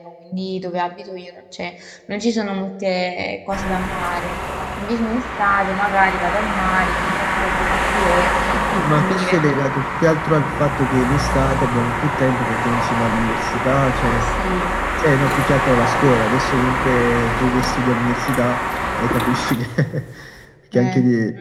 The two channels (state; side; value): identical; both; correlation 1.00